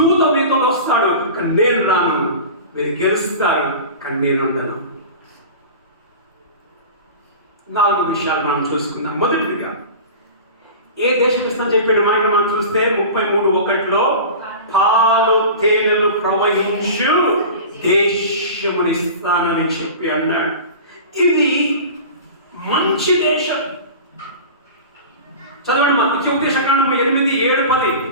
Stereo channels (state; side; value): inverted; both; correlation -0.34